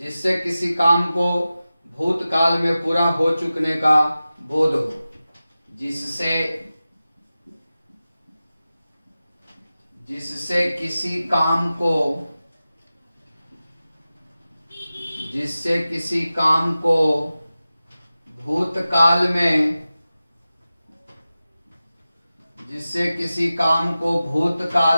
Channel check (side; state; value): both; inverted; correlation -0.95